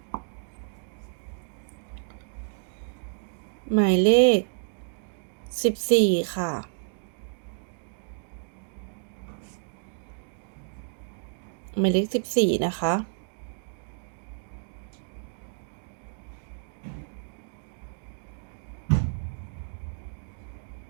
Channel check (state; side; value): silent; left; digital silence